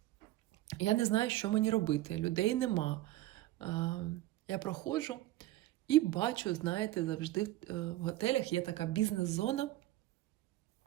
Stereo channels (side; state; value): left; quieter; 15.9 dB